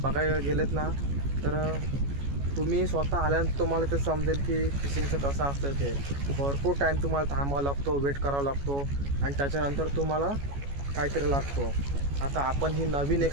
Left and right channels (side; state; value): left; late; 14 ms